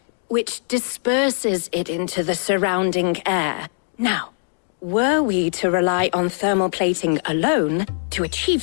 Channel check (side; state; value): right; silent; digital silence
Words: which disperses it into the surrounding air. Now, were we to rely on thermal plating alone to